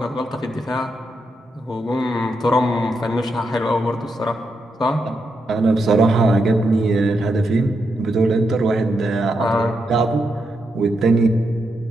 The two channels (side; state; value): both; normal; correlation 0.83